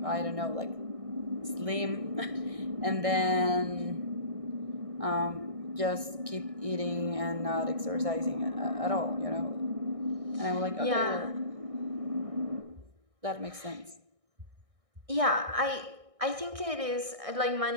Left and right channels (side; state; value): left; late; 1.6 ms